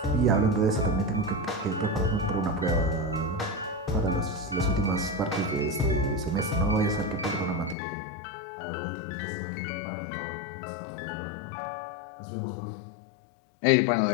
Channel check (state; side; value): drops out; right; at 7.8 s